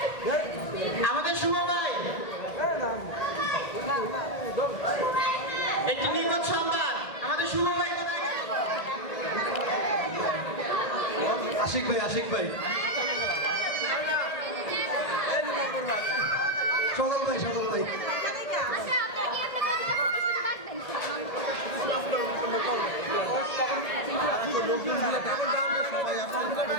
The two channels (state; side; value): late; right; 1.7 ms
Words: আমাদের শুভ ভাই, একটি নিখোঁজ সংবাদ, আমাদের শুভ ভাই কোথায় গেল? আশিক ভাই, আশিক ভাই, সদল ভাই, সদল ভাই।